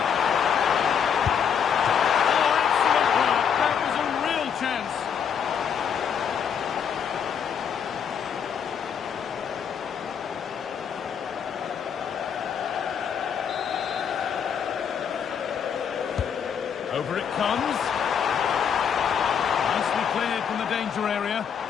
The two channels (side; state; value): right; quieter; 7.6 dB